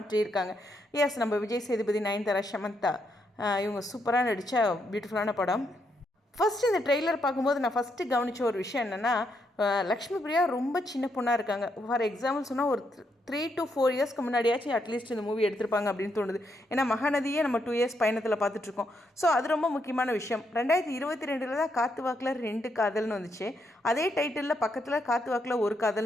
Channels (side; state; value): both; normal; correlation 0.78